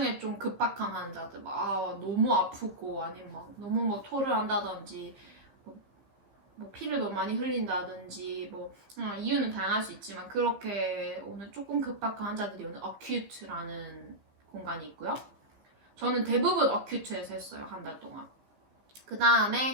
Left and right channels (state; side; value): late; left; 15 ms